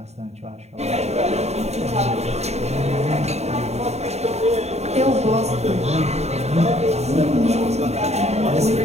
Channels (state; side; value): late; left; 0.32 ms